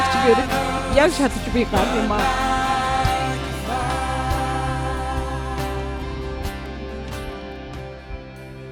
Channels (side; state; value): both; identical; correlation 1.00